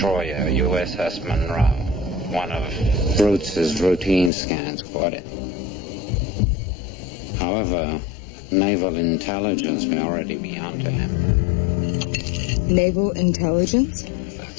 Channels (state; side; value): drops out; right; at 4.3 s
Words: USS Monroe. One of Brutes' routine scans caught it. However, naval intelligence may already be onto him. Naval intelligence?